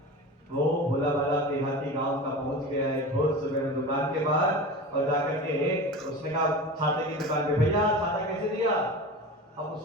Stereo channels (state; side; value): normal; both; correlation 0.31